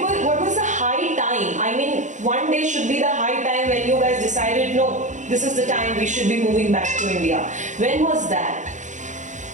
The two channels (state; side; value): late; left; 0.35 ms